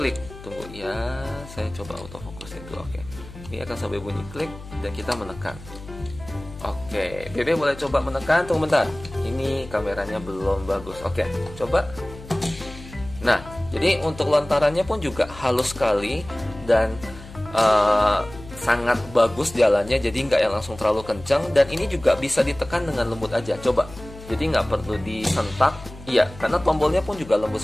Tunggu ya, saya coba autofokusin dulu. Oke, ini akan sampai bunyi klik dan kita menekan. Oke, Bebe boleh coba menekan. Tunggu bentar, ini kameranya belum bagus. Oke, coba. Nah, jadi untuk lontarannya pun juga halus sekali dan sangat bagus jalannya. Jadi nggak yang langsung terlalu kencang, dan ini juga bisa ditekan dengan lembut aja. Coba, jadi nggak perlu disentak. Iya, karena tombolnya pun juga lembut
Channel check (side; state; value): left; noise; hum, 16 dB below the sound